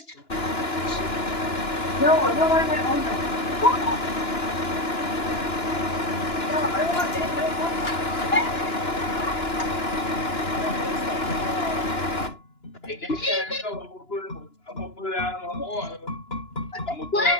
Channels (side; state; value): right; late; 2.9 ms